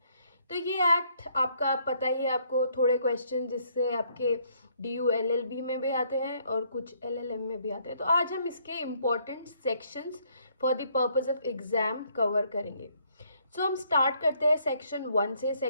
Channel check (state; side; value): inverted; both; correlation -0.68